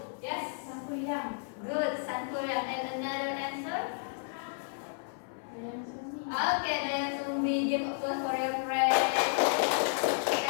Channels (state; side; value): silent; right; 56 dB below the other